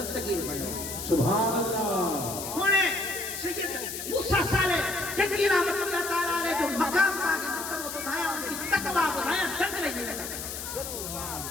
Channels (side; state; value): left; noise; hiss, 7 dB below the sound